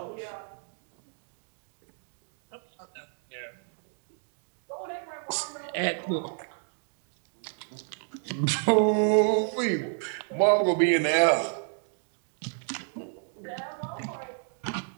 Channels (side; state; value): left; silent; 55 dB below the other